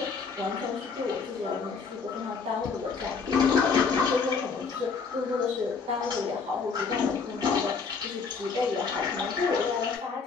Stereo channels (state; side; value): quieter; right; 5.2 dB